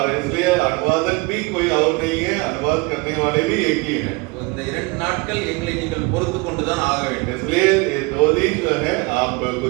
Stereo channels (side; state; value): left; quieter; 26.5 dB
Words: इसलिए अनुवादक भी कोई और नहीं है, अनुवाद करने वाले भी एक ही है। இந்த 2 நாட்கள் எங்களை நீங்கள் பொறுத்து கொண்டு தான் ஆக வேண்டும்। इसलिए ये 2 दिन जो है आप